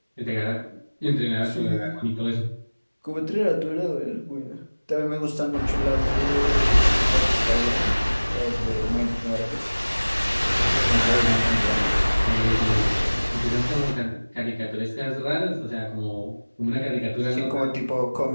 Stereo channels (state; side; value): inverted; both; correlation -1.00